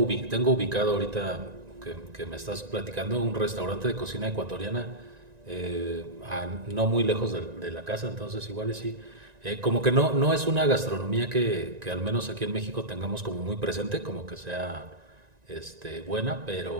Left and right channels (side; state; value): left; late; 1.9 ms